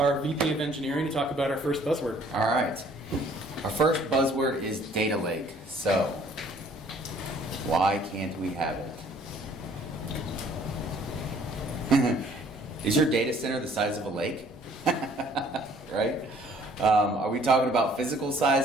VP of Engineering, to talk about our first buzzword. All right. Our first buzzword is data lake. So why can't we have it? Is your data center the size of a lake? Right? Are we talking about physical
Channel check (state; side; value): normal; both; correlation 0.58